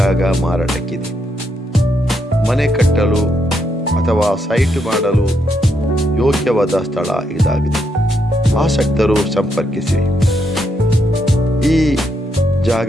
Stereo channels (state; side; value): normal; both; correlation 0.78